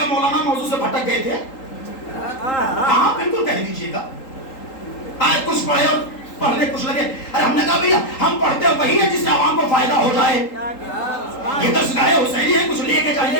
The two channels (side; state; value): right; late; 3.8 ms